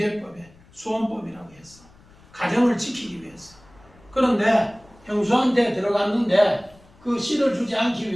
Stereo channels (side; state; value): left; noise; rumble, 27 dB below the sound